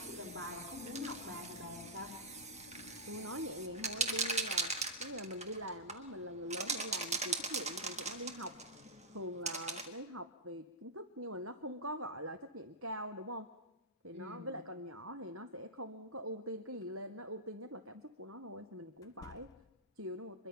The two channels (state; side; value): normal; both; correlation -0.12